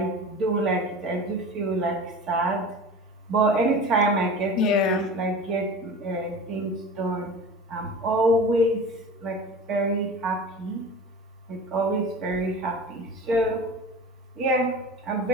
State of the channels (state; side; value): normal; both; correlation 0.35